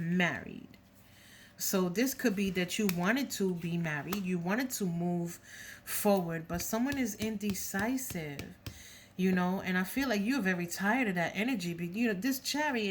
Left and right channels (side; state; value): both; identical; correlation 1.00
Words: So this could be that you wanted to be married, you wanted to move forward, but someone is indecisive, and I feel like you're very tired of that energy. But this